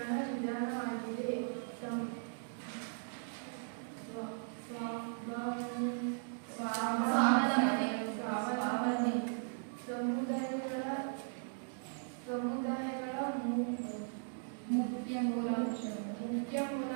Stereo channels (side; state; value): left; silent; digital silence